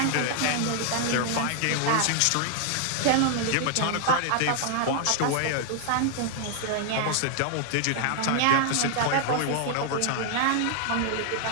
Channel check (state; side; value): different; both; correlation 0.00